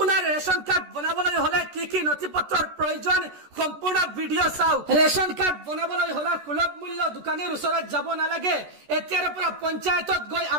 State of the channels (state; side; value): late; left; 14 ms